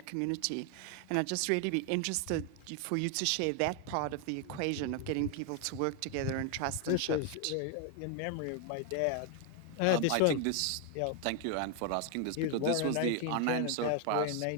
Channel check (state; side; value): different; both; correlation 0.01